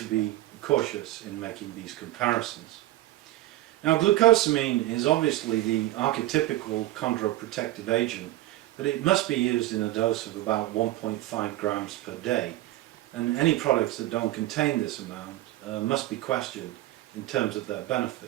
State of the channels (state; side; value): quieter; left; 16.0 dB